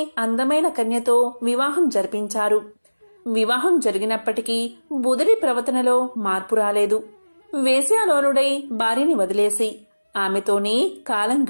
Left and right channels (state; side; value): inverted; both; correlation -1.00